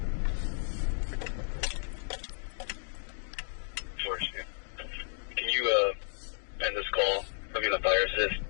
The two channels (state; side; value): silent; right; digital silence